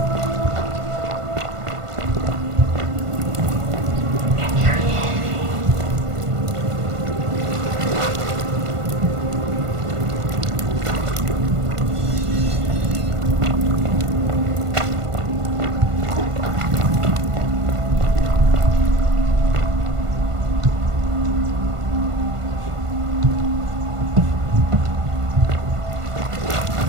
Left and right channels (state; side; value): late; left; 1.5 ms